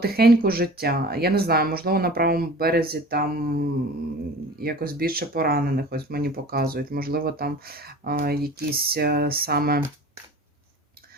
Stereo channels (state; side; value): normal; both; correlation 0.40